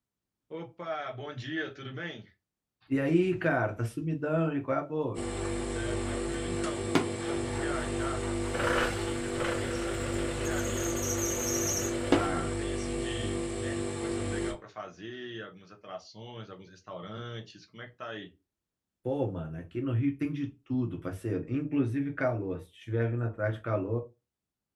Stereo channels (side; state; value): both; identical; correlation 1.00